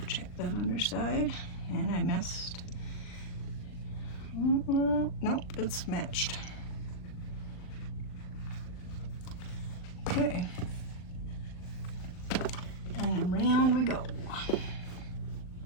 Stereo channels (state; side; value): late; right; 39 ms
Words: Check that underside, and I messed. Nope, it's matched. Okay. And around we go.